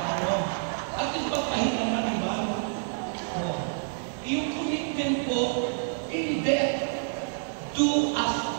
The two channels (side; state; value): left; silent; digital silence